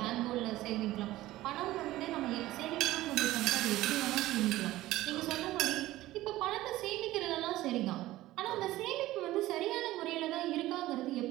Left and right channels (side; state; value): left; quieter; 16.4 dB